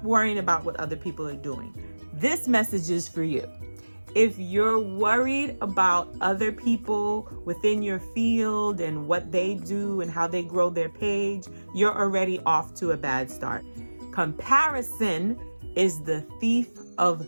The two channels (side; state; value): both; inverted; correlation -1.00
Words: worrying about what other people are doing. This message is for you. If you're worried about other people within your field and what they do and how they grow their page, you're already off to a bad start. Comparison is the thief of